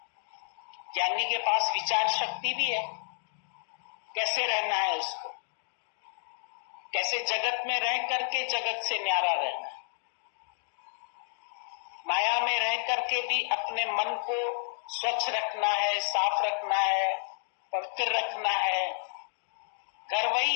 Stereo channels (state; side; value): silent; right; digital silence